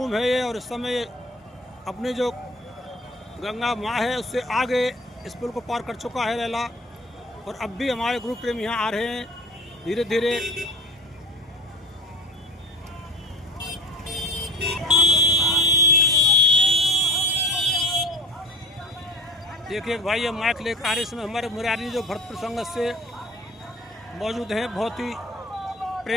है ये। और इस समय अपनी जो गंगा माँ है उससे आगे इस पुल को पार कर चुका है रैला। और अब भी हमारे ग्रुप प्रेम यहाँ आ रहे हैं धीरे धीरे। देखिए भाई ये माइक लेकर आ रहे, इसमें हमारे मुरारी जो भरतपुर संगत से मौजूद हैं, बहुत ही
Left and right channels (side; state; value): both; normal; correlation 0.42